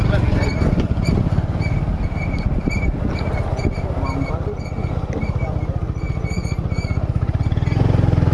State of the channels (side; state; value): both; identical; correlation 1.00